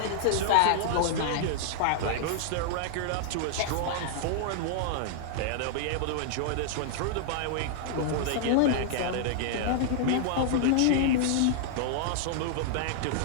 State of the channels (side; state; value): both; different; correlation -0.01